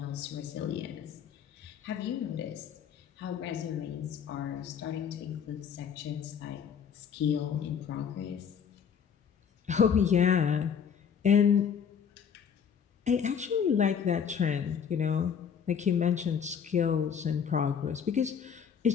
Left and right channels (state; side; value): quieter; right; 7.4 dB